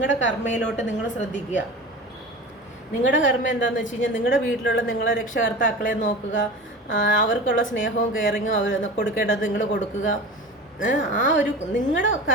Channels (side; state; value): both; normal; correlation 0.33